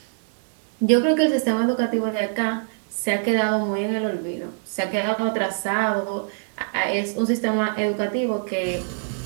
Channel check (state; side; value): silent; left; digital silence